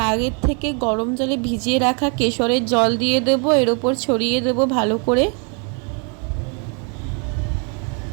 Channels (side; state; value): left; quieter; 37.0 dB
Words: আগের থেকে গরম জলে ভিজিয়ে রাখা কেশরের জল দিয়ে দেব, এর ওপর ছড়িয়ে দেব ভালো করে।